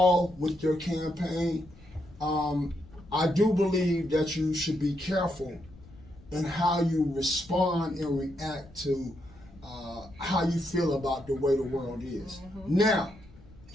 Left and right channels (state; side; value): noise; left; rumble, 22 dB below the sound